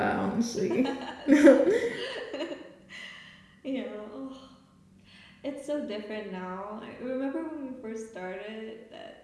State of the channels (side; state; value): both; identical; correlation 1.00